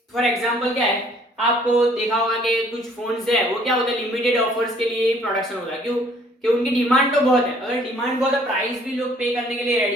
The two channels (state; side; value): normal; both; correlation 0.60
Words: फॉर एग्जांपल क्या है, आपको देखा होगा कि कुछ फोन्स है वो क्या होता है लिमिटेड ऑफर्स के लिए प्रोडक्शन होता है, क्यों कि उनकी डिमांड तो बहुत है, अगर डिमांड बहुत है प्राइस भी लोग पे करने के लिए